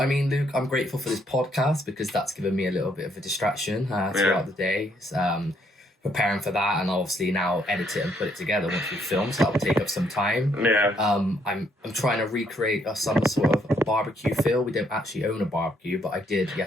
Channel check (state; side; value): normal; both; correlation 0.71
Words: mean, Luke, I'm grateful for this podcast because that's given me a little bit of a distraction throughout the day. Preparing for that, and obviously now edit it and put it together once we film, so that will take up some time. I'm trying to recreate some sort of barbecue feel. We don't actually own a barbecue, but I did